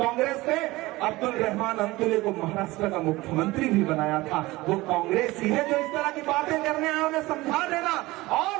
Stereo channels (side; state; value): left; quieter; 19.9 dB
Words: ने अब्दुल रहमान अंतुले को महाराष्ट्र का मुख्यमंत्री भी बनाया था। वो कांग्रेस ही है जो इस तरह की बातें करने आए, उन्हें समझा देना।